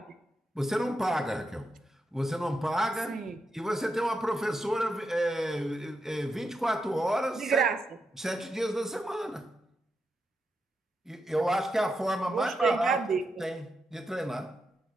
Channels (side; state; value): both; normal; correlation 0.85